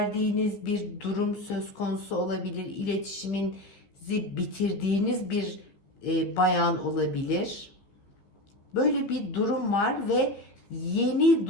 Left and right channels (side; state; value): right; late; 15 ms